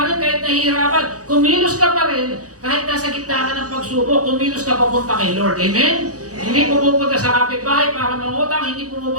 rin kahit nahihirapan, kumilos ka pa rin kahit nasa gitna ka ng pagsubok, kumilos ka papunta kay Lord. Amen? Hindi pumupunta sa kapitbahay para mangutang, hindi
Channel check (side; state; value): left; late; 0.67 ms